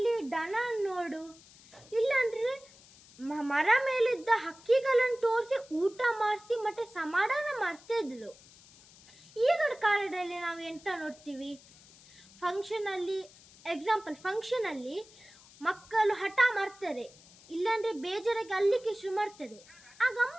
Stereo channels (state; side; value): noise; left; hiss, 23 dB below the sound